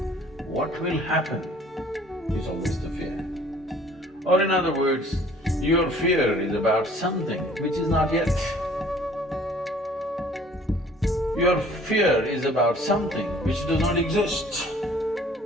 What will happen is always the fear. Or in other words, your fear is about something which is not yet. Your fear is about something which does not exist.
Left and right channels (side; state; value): both; normal; correlation 0.53